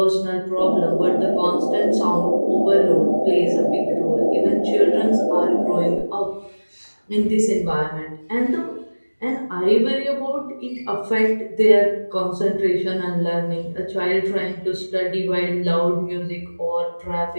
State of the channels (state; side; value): inverted; both; correlation -1.00